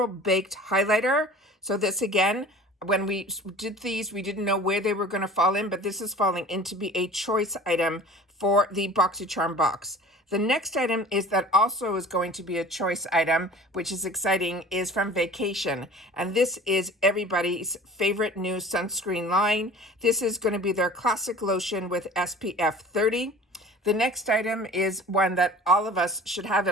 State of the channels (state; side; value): normal; both; correlation 0.43